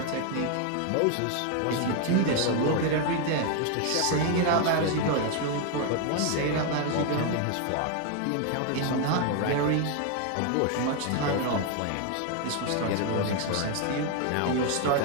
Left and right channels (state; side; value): different; both; correlation 0.01